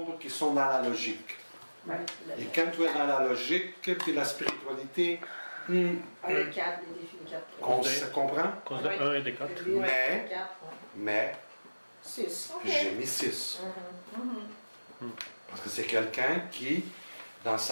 qui sont dans la logique. Et quand tu es dans la logique, puis la spiritualité, Le 4, les défis de 4. on se comprend, À cause de 1 et de 4. Mais- 4. mais 6. j'ai mis 6. Parce que c'est quelqu'un qui, dans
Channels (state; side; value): inverted; both; correlation -1.00